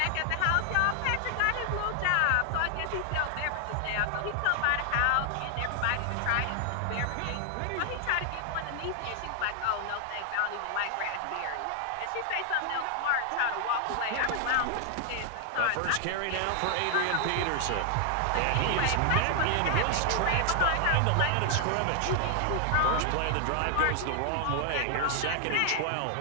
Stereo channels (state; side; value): different; both; correlation 0.00